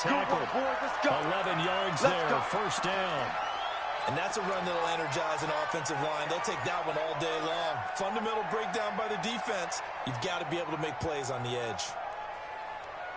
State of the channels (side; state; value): both; identical; correlation 1.00